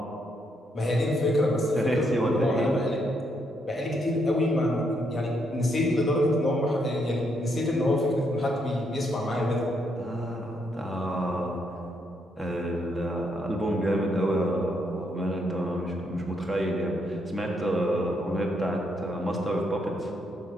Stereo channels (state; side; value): normal; both; correlation 0.76